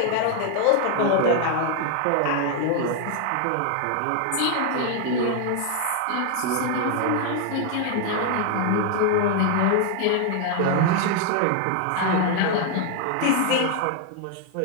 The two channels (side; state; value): both; different; correlation 0.00